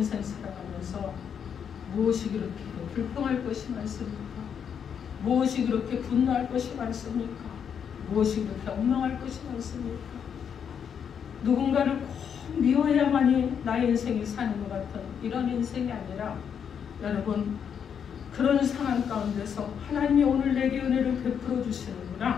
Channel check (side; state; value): right; quieter; 7.7 dB